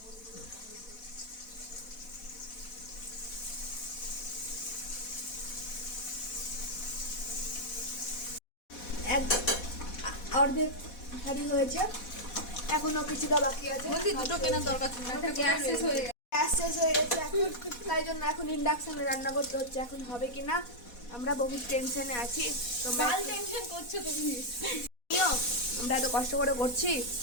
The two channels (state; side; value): late; right; 4.1 ms